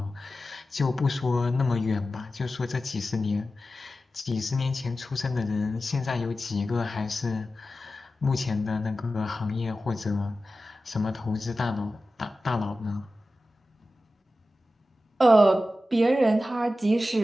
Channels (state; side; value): normal; both; correlation 0.93